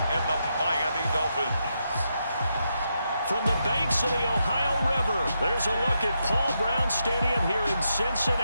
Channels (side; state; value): both; inverted; correlation -0.83